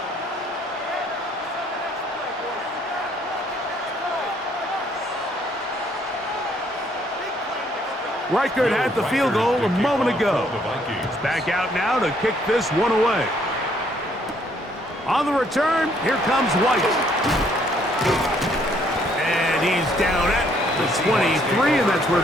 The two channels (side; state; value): both; normal; correlation 0.67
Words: Reichert had the field goal a moment ago. He's back out now to kick this one away. On the return, here comes White. And he's down at the 23, and that's where